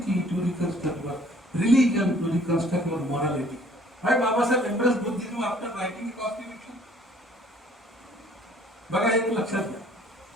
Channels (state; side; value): normal; both; correlation 0.57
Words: to reconstruct your religion, to reconstruct your morality. Why Baba Sahib embraced Buddhism after writing the constitution? बघा एक लक्षात घ्या.